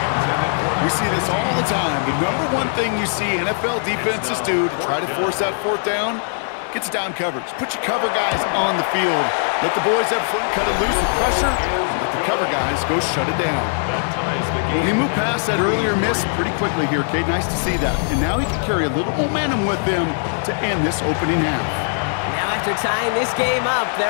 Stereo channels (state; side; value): silent; right; digital silence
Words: We see this all the time. The number one thing you see NFL defenses do to try to force that fourth down, gets down coverage. Put your cover guys on the field. Let the boys up front cut it loose with pressure. And let the cover guys go shut it down. Well, he moved past that earlier miss pretty quickly here, Kate. Nice to see that. And now he can carry a little momentum with him to end this opening half. Now after tying this game up,